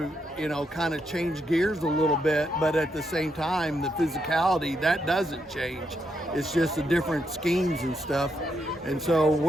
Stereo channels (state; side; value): normal; both; correlation 0.80